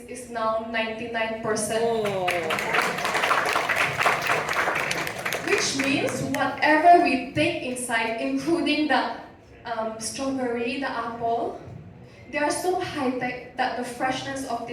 is now 99%. Which means whatever we take inside, including the strawberry, the apple, they are so high-tech that the freshness of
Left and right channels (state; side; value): identical; both; correlation 1.00